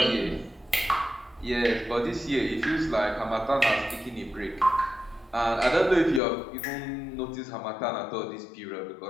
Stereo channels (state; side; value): drops out; right; at 6.2 s